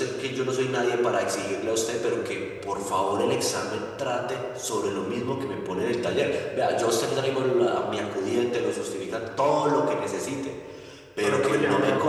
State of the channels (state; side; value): identical; both; correlation 1.00